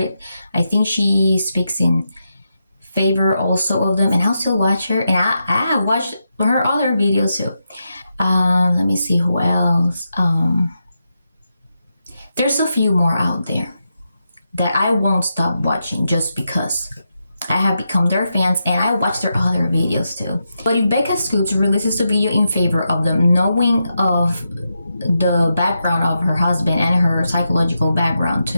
I think she speaks in favor also of them, and I'll still watch her, and I watched her other videos too. Let me see who else. There's a few more out there that I won't stop watching just because I have become their fans and I watch their other videos too. But if Becca Scoops releases a video in favor of them, knowing of the background of her husband and her psychological background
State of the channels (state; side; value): inverted; both; correlation -0.86